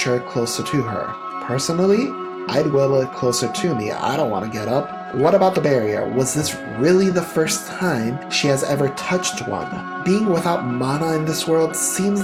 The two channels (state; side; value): identical; both; correlation 1.00